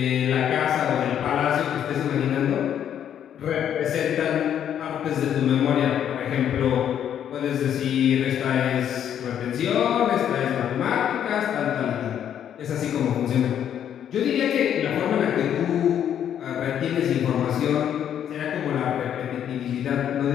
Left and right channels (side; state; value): right; quieter; 9.6 dB